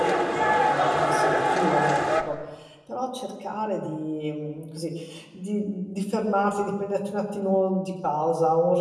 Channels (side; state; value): both; identical; correlation 1.00